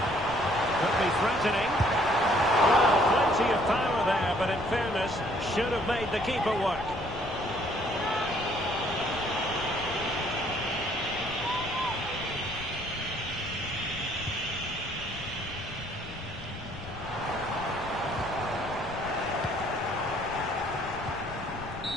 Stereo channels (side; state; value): left; noise; rumble, 15 dB below the sound